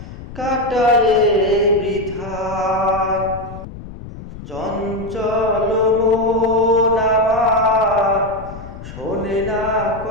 কাটায়ে বৃথায়। চঞ্চল মন আমার শোনে না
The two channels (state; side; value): noise; left; rumble, 13 dB below the sound